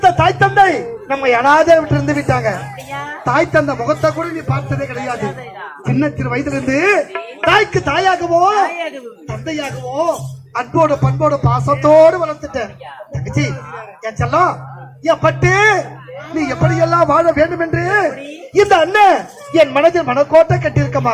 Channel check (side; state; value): both; identical; correlation 1.00